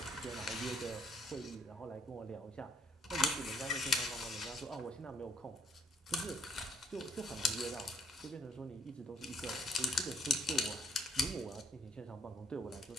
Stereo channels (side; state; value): both; normal; correlation 0.68